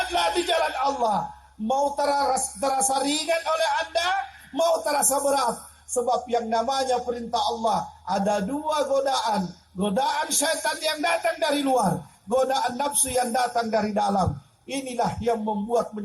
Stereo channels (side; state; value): both; identical; correlation 1.00